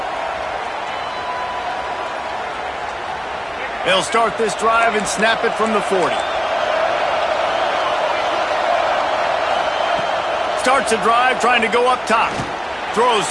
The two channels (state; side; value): identical; both; correlation 1.00